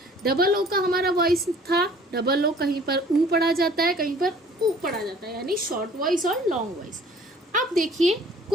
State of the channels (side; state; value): both; normal; correlation 0.52